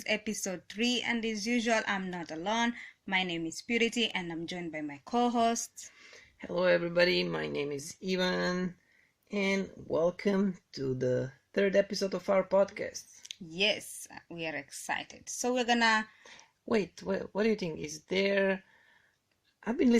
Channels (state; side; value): identical; both; correlation 1.00